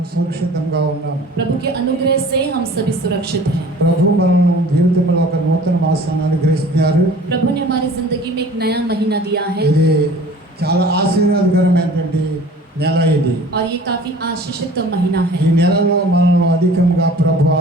సురక్షితంగా ఉన్నాం. प्रभु के अनुग्रह से हम सभी सुरक्षित हैं। ప్రభు మనం జీవితంలో ఒక నూతన మాసాన్ని అనుగ్రహిస్తున్నారు. प्रभु ने हमारी जिंदगी में एक नया महीना दिया है ఇది చాలా ఆశీర్వాదకరమైనటువంటి నెల ఇది. और ये काफी आशीषित महीना है। ఈ నెలలో మనల్ని అధికంగా ప్రభు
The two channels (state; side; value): normal; both; correlation 0.46